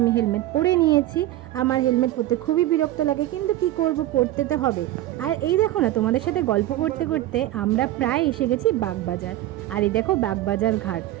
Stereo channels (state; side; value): quieter; left; 14.8 dB